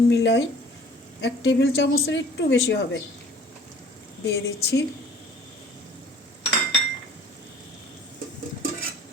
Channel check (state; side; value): normal; both; correlation 0.51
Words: মিলাই 1 টেবিল চামচের একটু বেশি হবে, দিয়ে দিচ্ছি।